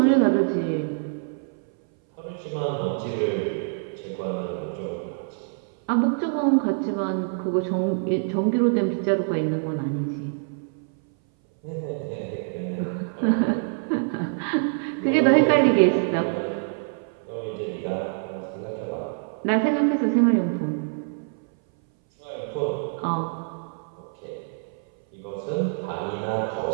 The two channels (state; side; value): silent; left; 59 dB below the other